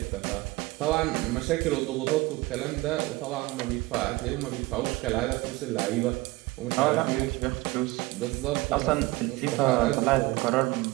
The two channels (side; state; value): left; quieter; 21.2 dB